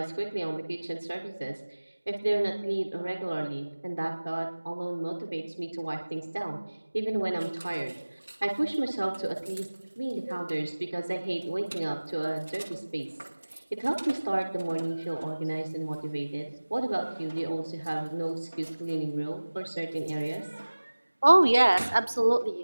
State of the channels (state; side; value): inverted; both; correlation -1.00